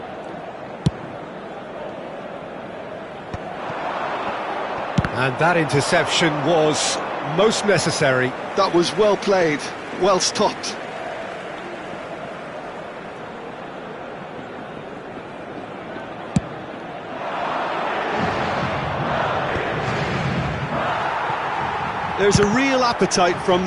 And that interception was most necessary. That was well played, well stopped. There's a real appetite from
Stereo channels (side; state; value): both; identical; correlation 1.00